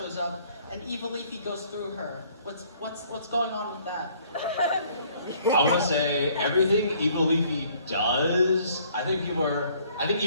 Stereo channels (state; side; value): inverted; both; correlation -0.60